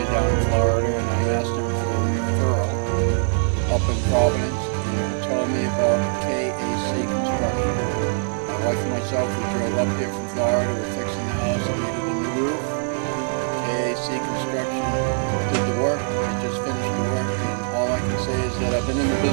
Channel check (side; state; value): left; silent; 64 dB below the other